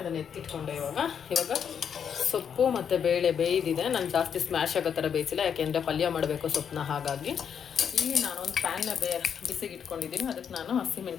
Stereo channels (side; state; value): right; quieter; 7.7 dB